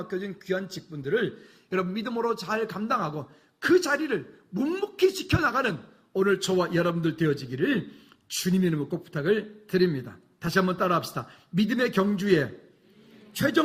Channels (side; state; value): both; identical; correlation 1.00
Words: 귀한 직분들을 여러분 믿음으로 잘 감당하고 그 자리를 묵묵히 지켜나가는 오늘 저와 여러분들 되어지기를 주님의 이름으로 꼭 부탁을 드립니다. 다시 한번 따라합시다. 믿음의 경주의